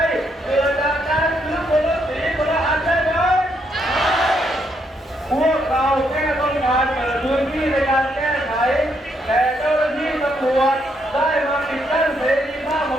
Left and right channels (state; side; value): normal; both; correlation 0.75